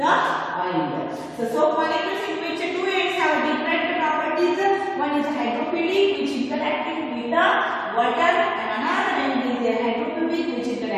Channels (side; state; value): both; identical; correlation 1.00